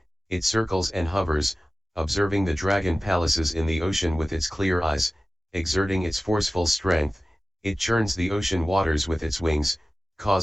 it circles and hovers, observing the dragon palaces in the ocean with its clear eyes, exerting its forceful strength, it churns the ocean waters with its wings,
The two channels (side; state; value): both; normal; correlation 0.96